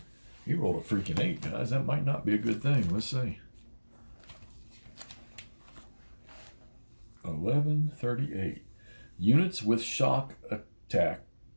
He rolled a freaking 8, guys. That might not be a good thing. Let's see. 1138. Units with shock attackers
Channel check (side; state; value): both; inverted; correlation -1.00